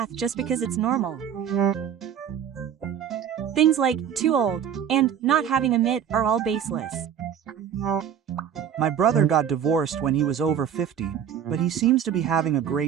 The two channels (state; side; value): quieter; left; 8.8 dB